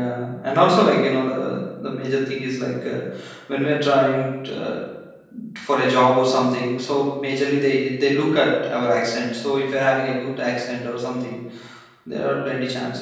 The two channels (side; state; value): both; identical; correlation 1.00